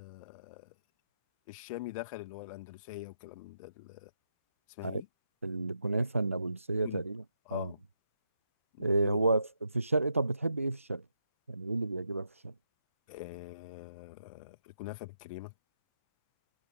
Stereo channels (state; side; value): inverted; both; correlation -0.81